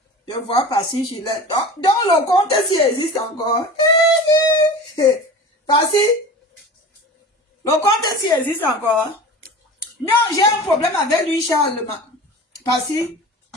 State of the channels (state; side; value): normal; both; correlation 0.35